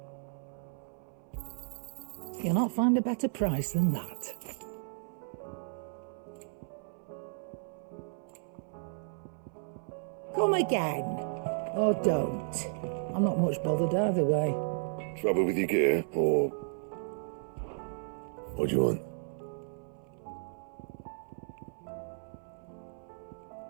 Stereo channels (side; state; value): left; silent; 55 dB below the other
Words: You'll not find a better price than that. Come again. Or don't. I'm not much bothered either way. Trouble with your gear, or... What do you want?